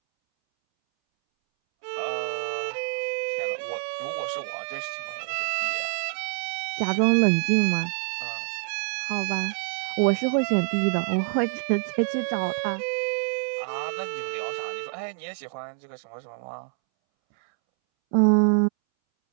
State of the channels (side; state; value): left; silent; 61 dB below the other